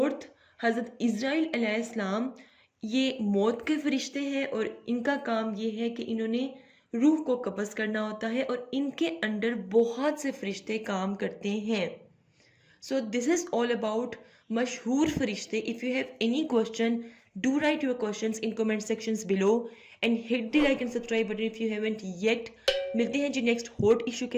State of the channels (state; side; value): identical; both; correlation 1.00